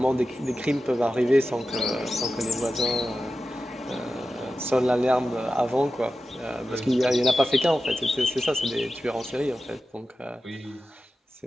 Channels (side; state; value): both; normal; correlation 0.93